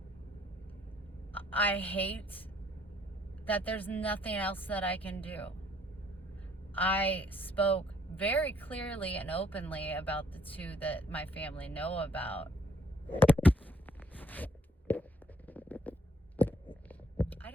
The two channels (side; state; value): both; normal; correlation 0.64